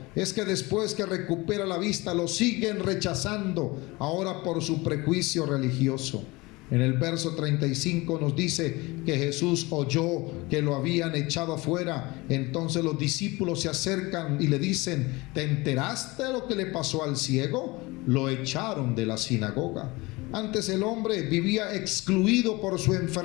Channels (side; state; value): right; quieter; 23.0 dB